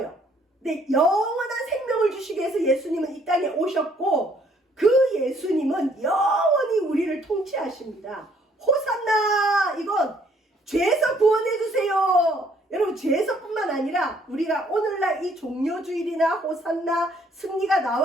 근데 영원한 생명을 주시기 위해서 예수님은 이 땅에 오셨고 그 예수님은 영원히 우리를 통치하십니다. 호산나! 이건 죄에서 구원해 주세요. 여러분 죄에서뿐만 아니라 우리가 오늘날 이 종료주일이나 호산나 승리가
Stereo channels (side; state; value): both; normal; correlation 0.64